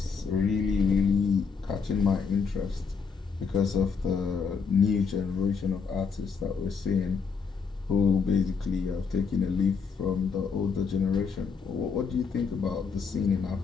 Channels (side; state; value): right; quieter; 5.6 dB